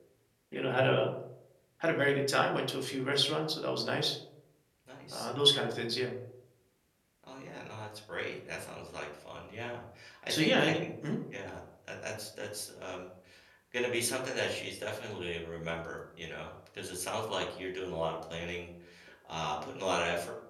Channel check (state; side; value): identical; both; correlation 1.00